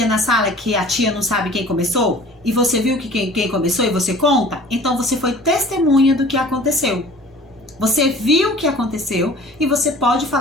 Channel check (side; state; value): both; normal; correlation 0.46